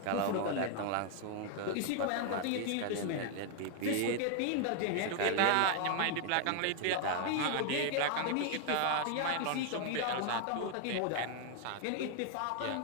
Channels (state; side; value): different; both; correlation 0.00